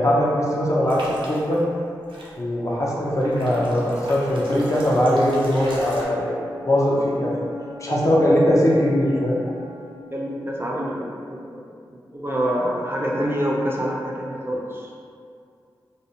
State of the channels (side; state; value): both; normal; correlation 0.86